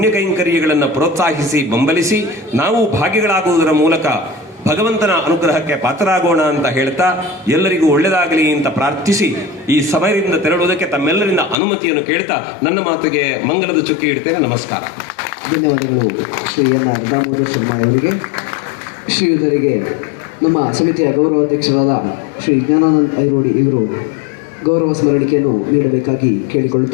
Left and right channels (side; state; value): right; drops out; at 11.6 s